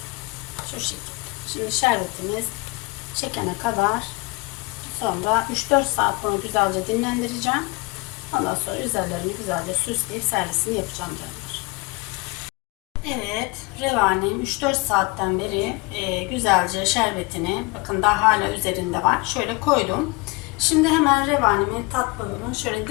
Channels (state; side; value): quieter; right; 26.1 dB